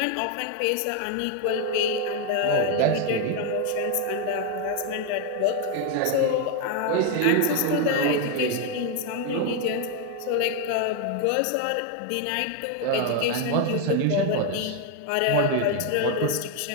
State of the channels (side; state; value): both; different; correlation 0.01